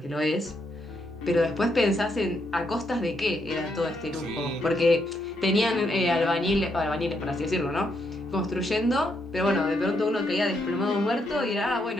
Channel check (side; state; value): both; normal; correlation 0.77